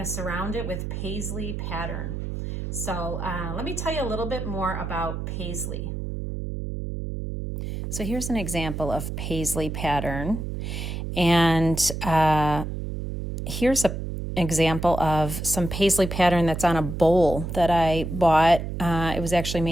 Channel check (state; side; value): noise; right; hum, 5 dB below the sound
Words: to surround it with Paisley pattern. So let me tell you a little bit more about Paisley. So here's an example of Paisley pattern. And here's an example of some Paisley pattern that's on a bowl that I bought. It was actually